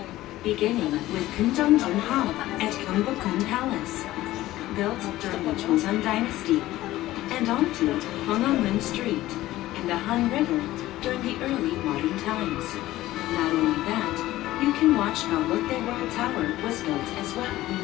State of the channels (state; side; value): quieter; right; 15.9 dB